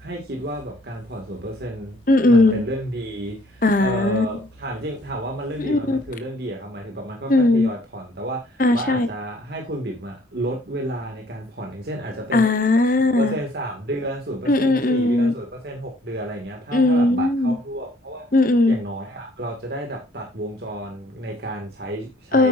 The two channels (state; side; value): normal; both; correlation 0.60